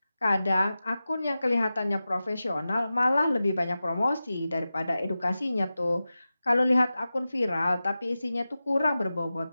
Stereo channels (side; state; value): both; inverted; correlation -0.94